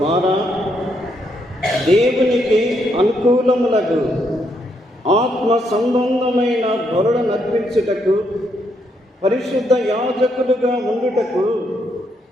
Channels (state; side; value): normal; both; correlation 0.76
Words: దేవునికి అనుకూలములకు ఆత్మ సంబంధమైన బలుల నర్పించుటకు, పరిశుద్ధ యాజకులుగా ఉండుటకు